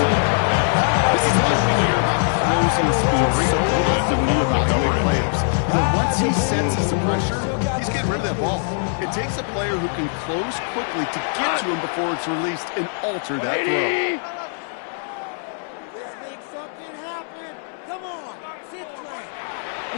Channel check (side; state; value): right; silent; 64 dB below the other